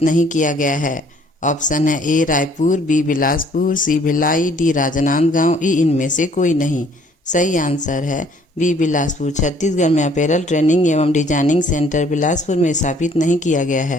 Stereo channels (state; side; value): normal; both; correlation 0.60